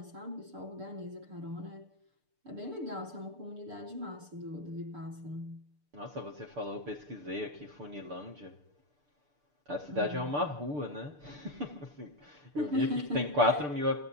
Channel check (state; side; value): late; left; 6.8 ms